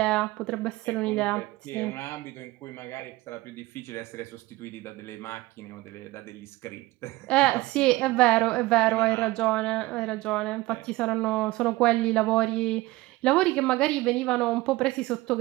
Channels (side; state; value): left; quieter; 19.5 dB